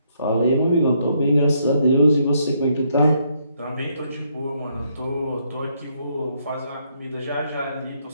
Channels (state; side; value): inverted; both; correlation -0.73